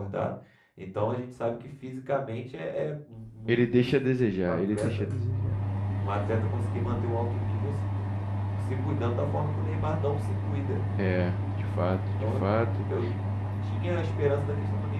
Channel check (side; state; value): both; identical; correlation 1.00